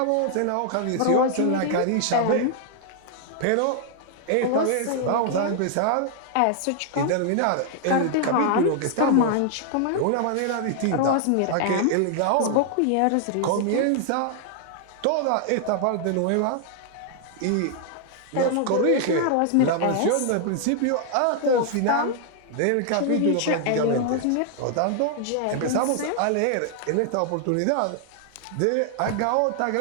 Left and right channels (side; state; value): both; different; correlation 0.00